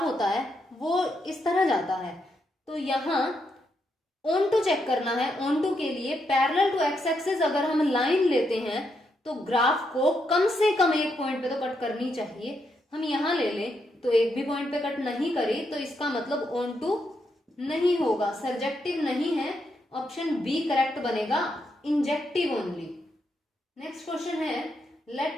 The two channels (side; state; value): both; normal; correlation 0.80